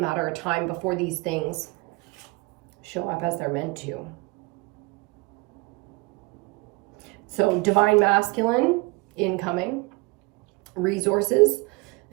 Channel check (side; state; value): left; quieter; 25.8 dB